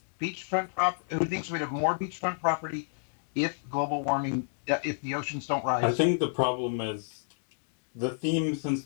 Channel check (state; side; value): silent; right; digital silence